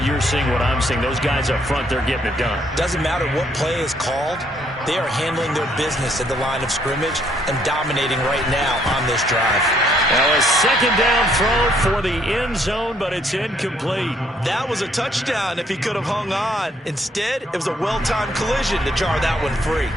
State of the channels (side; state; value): both; normal; correlation 0.68